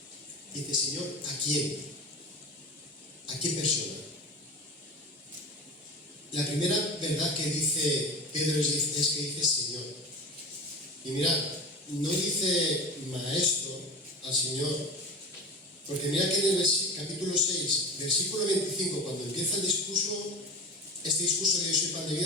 Dice, Señor, ¿a quién? ¿A qué persona? La primera verdad que dice Pedro es que dice Señor. Y mirad, no dice maestro al Señor, porque mira que en el capítulo 6, versículo 25, cuando empieza el discurso, este discurso de Yo soy pan de vida,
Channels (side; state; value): both; normal; correlation 0.31